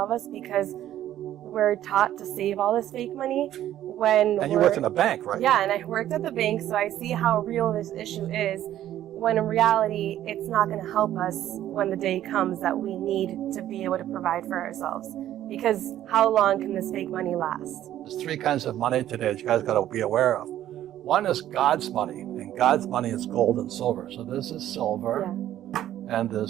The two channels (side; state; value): left; quieter; 12.3 dB